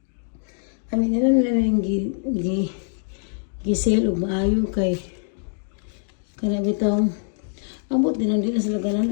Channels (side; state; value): right; silent; 60 dB below the other